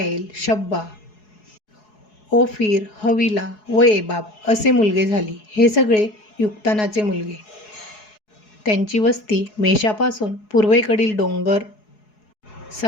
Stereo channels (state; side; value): late; right; 4.7 ms